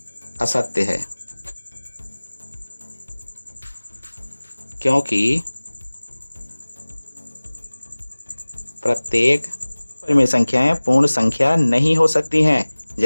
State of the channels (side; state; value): both; inverted; correlation -1.00